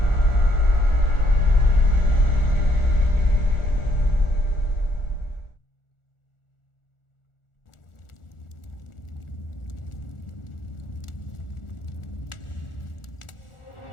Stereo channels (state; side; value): late; right; 1.4 ms